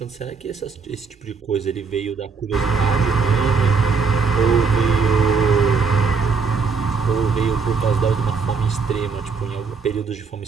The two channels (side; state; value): left; quieter; 5.1 dB